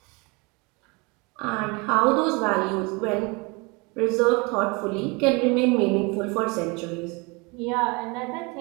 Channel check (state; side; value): quieter; left; 28.2 dB